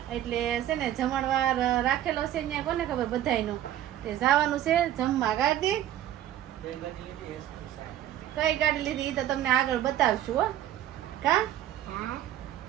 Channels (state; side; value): quieter; left; 12.3 dB